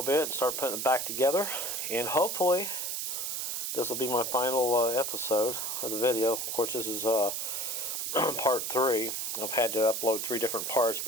bit and start putting it back together. And hopefully, this will be my final episode of the video. Of course, this is part 3. I've had to upload 3 different parts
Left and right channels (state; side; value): noise; right; hiss, 2 dB below the sound